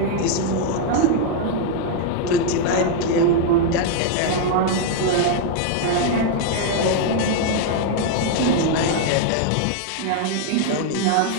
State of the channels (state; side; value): different; both; correlation 0.00